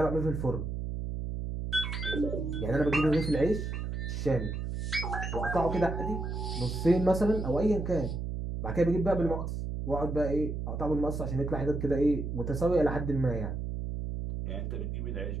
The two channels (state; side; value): noise; right; hum, 4 dB below the sound